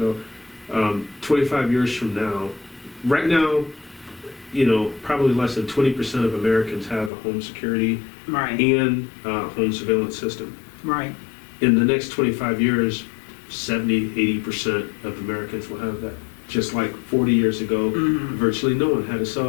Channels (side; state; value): right; drops out; at 7.1 s